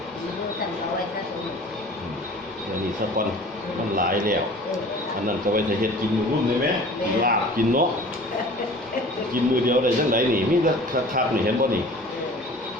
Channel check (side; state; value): both; normal; correlation 0.44